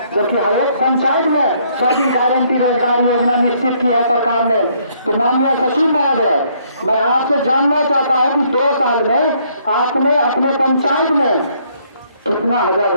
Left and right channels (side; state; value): both; inverted; correlation -0.67